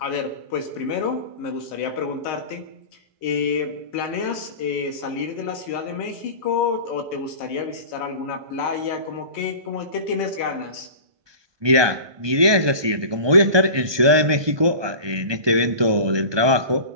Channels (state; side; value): late; left; 1.2 ms